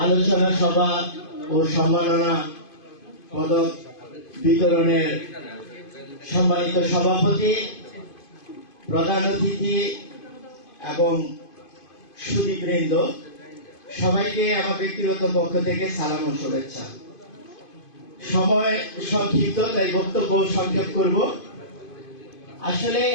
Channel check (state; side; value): late; right; 2.5 ms